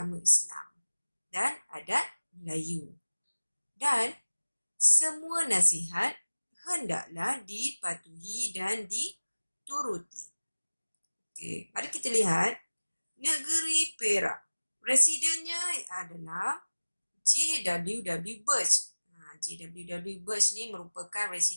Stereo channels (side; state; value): both; inverted; correlation -1.00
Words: Islam dan adat Melayu. Dan semua nasihat hendaklah dipatuhi dan dituruti. Okey, mari kita lihat negeri Perak. Residennya adalah J.W.W. Birch. J.W.W. Birch ni merupakan